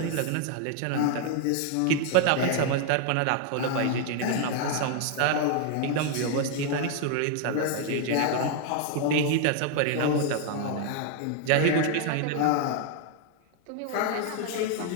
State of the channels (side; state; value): both; different; correlation 0.00